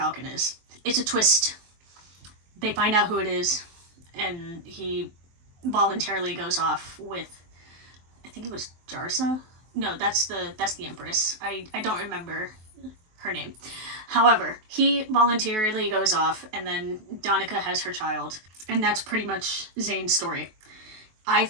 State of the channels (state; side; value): late; left; 23 ms